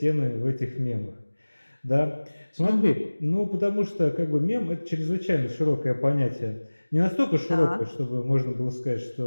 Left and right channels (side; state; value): both; inverted; correlation -1.00